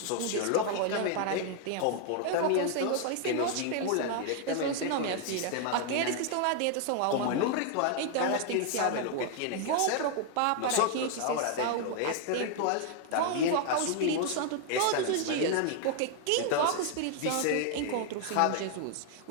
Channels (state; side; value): different; both; correlation 0.00